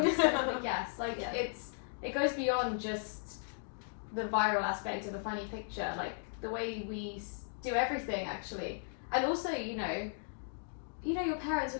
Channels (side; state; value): right; silent; digital silence